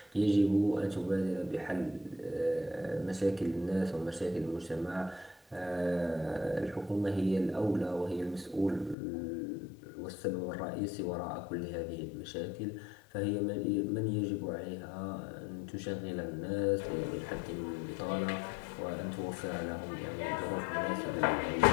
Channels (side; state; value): right; drops out; at 9.0 s